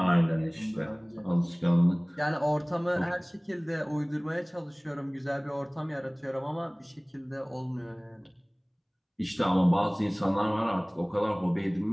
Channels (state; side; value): identical; both; correlation 1.00